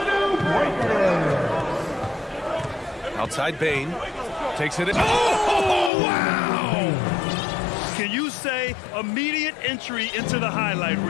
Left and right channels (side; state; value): right; drops out; at 5.9 s